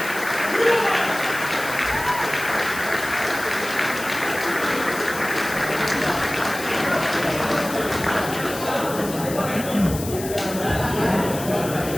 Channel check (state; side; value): noise; left; hiss, 10 dB below the sound